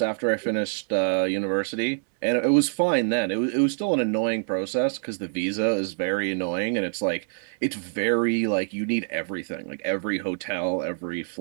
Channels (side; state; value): left; silent; 61 dB below the other